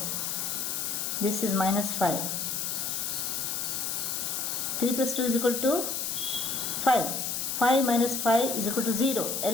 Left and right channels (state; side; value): noise; left; hiss, 1 dB below the sound